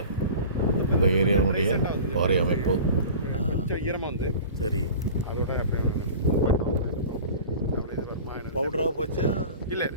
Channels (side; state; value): both; inverted; correlation -0.38